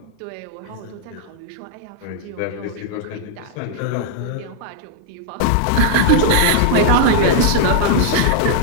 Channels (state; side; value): different; both; correlation -0.01